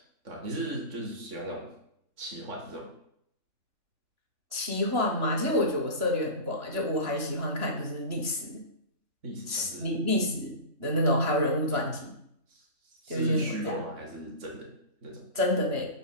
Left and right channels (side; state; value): left; late; 3.0 ms